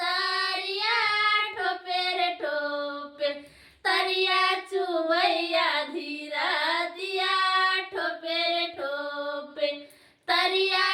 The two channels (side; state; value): both; identical; correlation 1.00